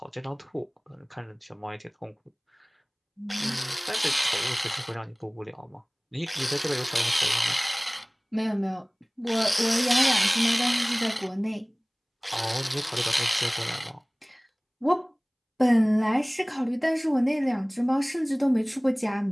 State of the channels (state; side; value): identical; both; correlation 1.00